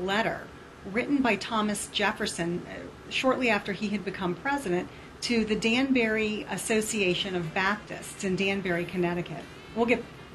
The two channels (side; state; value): both; identical; correlation 1.00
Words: written by Thomas Jefferson shortly after he had become president to the Danbury Association of Baptists in Danbury, Connecticut.